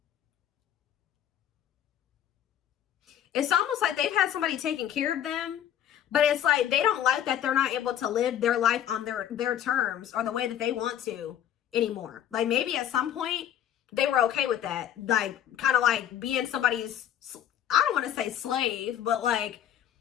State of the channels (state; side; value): quieter; right; 10.5 dB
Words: It's almost like they've had somebody taking care of them, but it's like they don't like that they're not able to live their life on their terms or the way that they want to anymore. Like maybe at some point they were okay with that. Like kind of like being somebody's, I don't want to say slave, but like